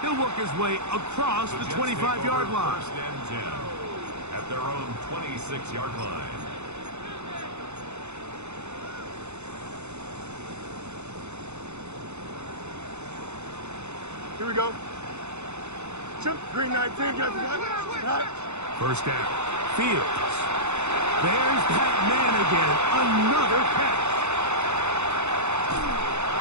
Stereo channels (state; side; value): late; left; 0.82 ms